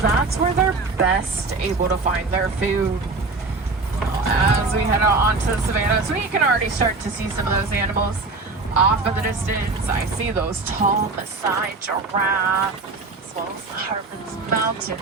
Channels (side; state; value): left; quieter; 3.7 dB